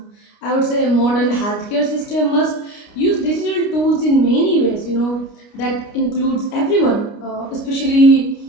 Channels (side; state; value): right; late; 29 ms